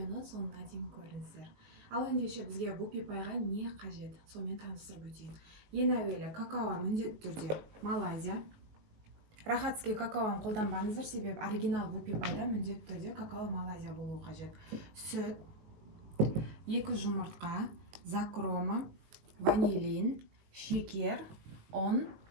соңына дейін көріңіздер. Ал ендеше бізге вупи пайға не қажет, сонымен таныстырып өтейін. Ең әуелі какао міндетті түрде Малайзия. Рахатский какаоны қолданбаңыздар, себебі оригинал вупи пайда міндетті түрде какао Малайзия болуы қажет. Сүт, 2 жұмыртқа, закрома, ванилин, шекер, ұн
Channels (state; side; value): late; left; 19 ms